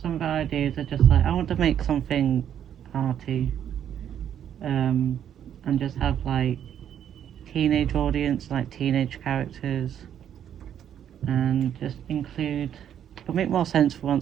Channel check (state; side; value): quieter; left; 9.6 dB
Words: of the ideas are just like, I want to make something arty, and just have like teenage audience, like teenage characters, and just include, it'll make more sense for